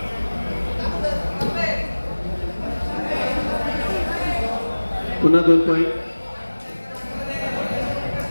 पुन्हा 2 पॉइंट।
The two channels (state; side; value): inverted; both; correlation -1.00